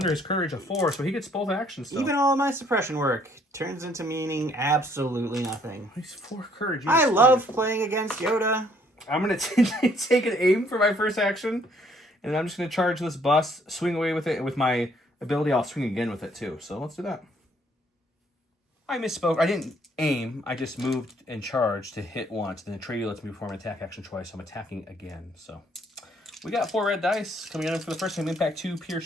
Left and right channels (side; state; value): both; normal; correlation 0.65